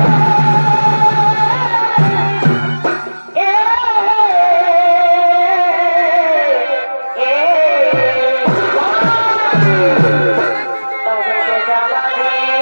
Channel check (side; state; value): both; inverted; correlation -1.00